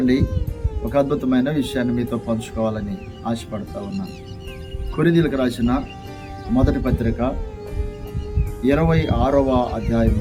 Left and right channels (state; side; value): identical; both; correlation 1.00